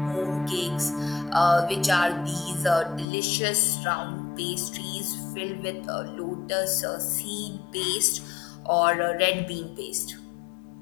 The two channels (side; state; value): right; drops out; at 3.1 s